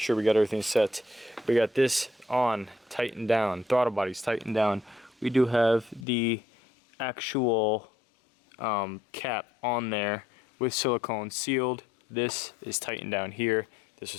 sure we got everything set. We got this on, tightened down, throttle body's tightened down. We do have the actual cap on there with silicone sealed. This is tightened down here. This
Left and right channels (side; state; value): right; drops out; at 6.1 s